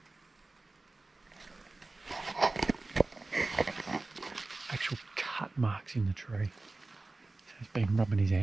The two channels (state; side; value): quieter; left; 3.3 dB